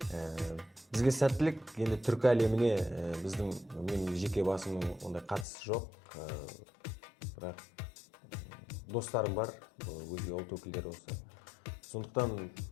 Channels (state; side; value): drops out; right; at 5.5 s